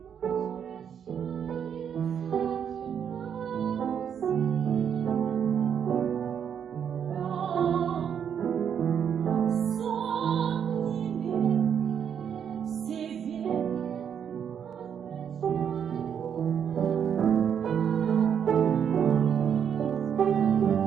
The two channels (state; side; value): quieter; left; 8.1 dB